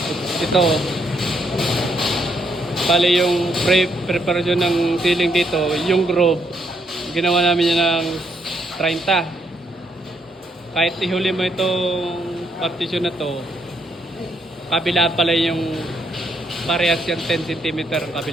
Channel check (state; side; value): normal; both; correlation 0.74